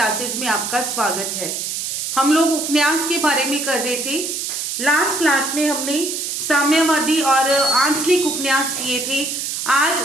में आपका स्वागत है। हम लोग उपन्यास के बारे में कर रहे थे। लास्ट क्लास में हमने साम्यवादी और आंचलिक उपन्यास किए थे।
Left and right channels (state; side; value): noise; right; hiss, 3 dB below the sound